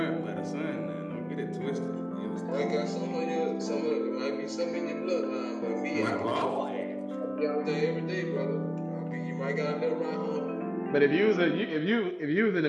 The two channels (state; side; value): identical; both; correlation 1.00